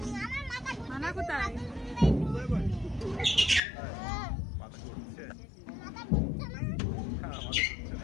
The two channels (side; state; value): right; drops out; at 3.6 s